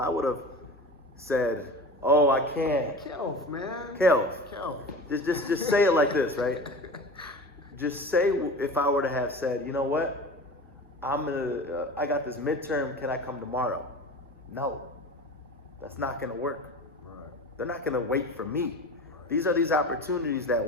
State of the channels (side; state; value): both; normal; correlation 0.34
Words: would have said, oh, I can't. Kelv, man. Kelv, Kelv. just say it like this, right? Just say, if I were to have said, you know what, I got this midterm, can I come tomorrow? No, that's not gonna work. Right. They're not gonna wait for me. These are these opportunities that